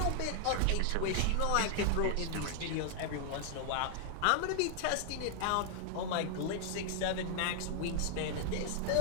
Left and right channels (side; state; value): both; different; correlation 0.00